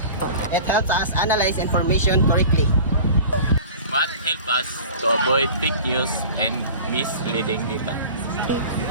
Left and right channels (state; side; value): inverted; both; correlation -0.39